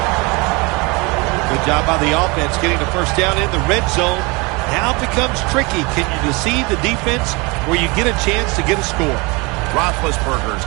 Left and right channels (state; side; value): quieter; left; 27.0 dB